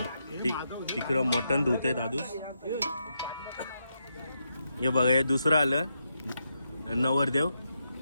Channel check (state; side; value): inverted; both; correlation -0.83